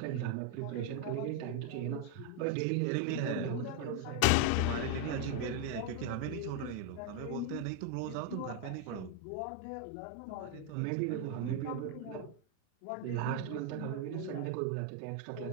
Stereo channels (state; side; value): different; both; correlation 0.01